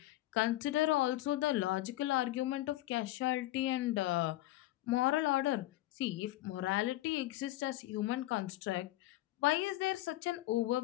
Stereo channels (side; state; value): right; quieter; 16.2 dB